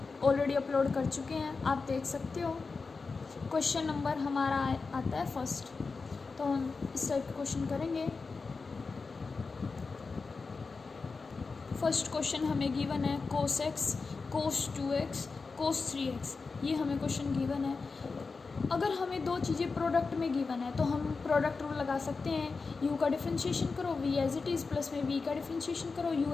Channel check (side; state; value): right; quieter; 4.4 dB